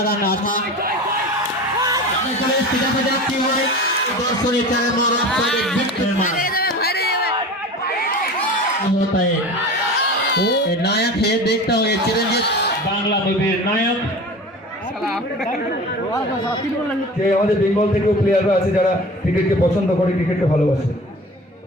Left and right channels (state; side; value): normal; both; correlation 0.36